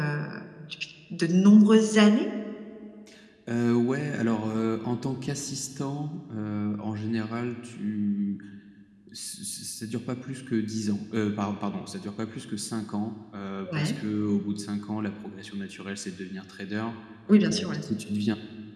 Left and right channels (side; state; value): both; identical; correlation 1.00